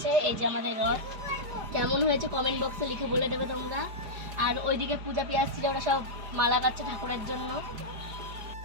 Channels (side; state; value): left; late; 4.9 ms